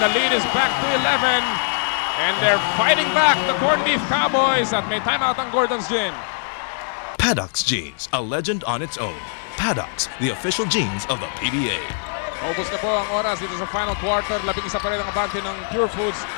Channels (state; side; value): silent; right; digital silence